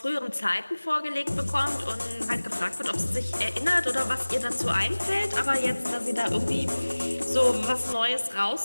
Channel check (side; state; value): both; inverted; correlation -1.00